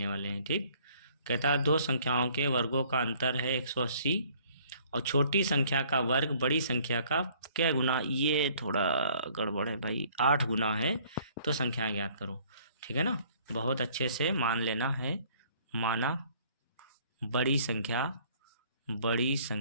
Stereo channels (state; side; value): inverted; both; correlation -0.58